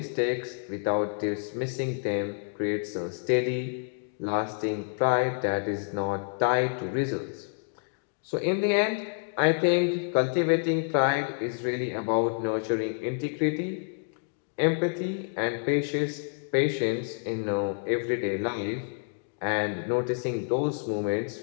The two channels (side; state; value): right; silent; 59 dB below the other